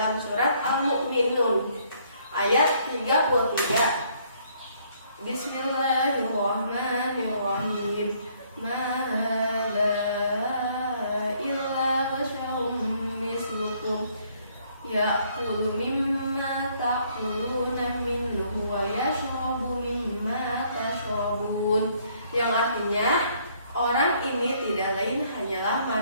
surat Al-Mu'minun ayat 33. Bismillahirrahmanirrahim. Ya'kulu mimma ta'kuluna minhu wa yashrabu mimma tashrabun. Yang artinya orang ini tidak lain hanyalah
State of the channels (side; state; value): both; inverted; correlation -0.65